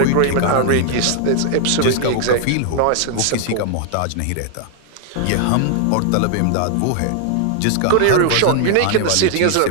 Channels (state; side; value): different; both; correlation 0.00